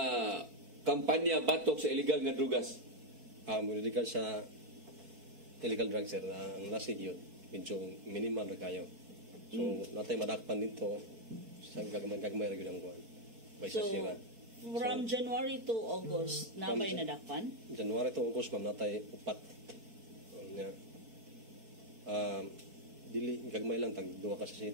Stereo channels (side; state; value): left; late; 4.5 ms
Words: kampanya batok sa illegal nga drugas? Muridikan sa illegal drugs sir, ang lasig yun, medyo minimal na kayo. So, natay madakpan dito, sa gagmay ra gyud ang buwan. May So, sasira. from January to August, napay nadakpan? January to August, ma'am, natay upat. Dili, gagmay lang, tag duwa ka sa